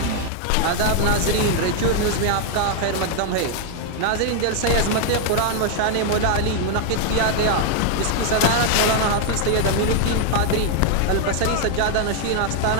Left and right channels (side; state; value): both; different; correlation 0.00